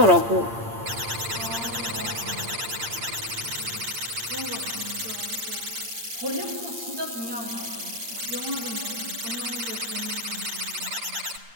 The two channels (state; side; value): late; left; 8.7 ms